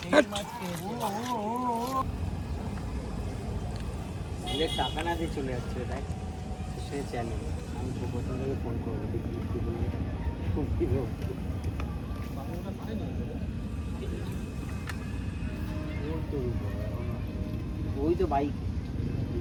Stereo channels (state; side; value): identical; both; correlation 1.00